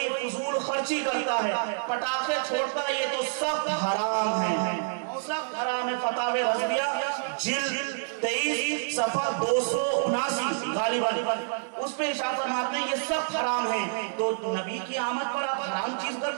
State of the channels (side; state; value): left; silent; digital silence